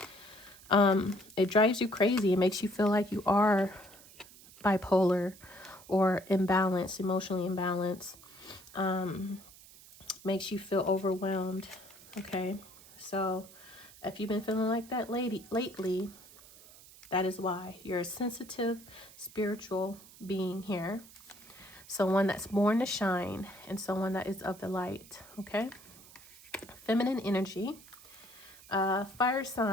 It drives you crazy. It makes you feel like you are bipolar or imbalanced, emotionally imbalanced. Makes you feel overwhelmed. Okay, so if you've been feeling like that lately, that is why. You're a sensitive, spiritual being here. Someone that's born to shine and someone that is of the light. Okay. Feminine energy. Fire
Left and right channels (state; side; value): noise; right; hiss, 21 dB below the sound